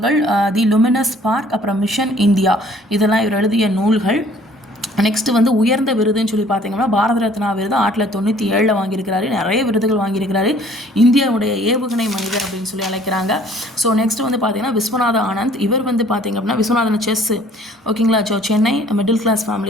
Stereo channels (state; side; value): normal; both; correlation 0.56